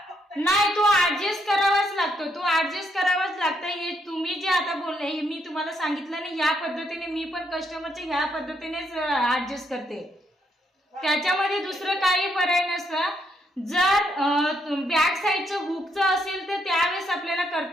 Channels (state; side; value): normal; both; correlation 0.75